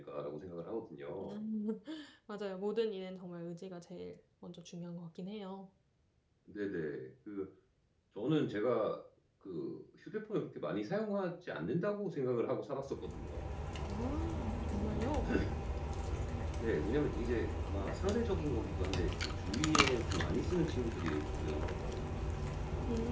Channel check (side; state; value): both; identical; correlation 1.00